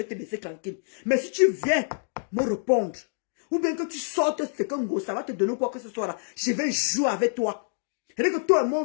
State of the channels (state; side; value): silent; right; digital silence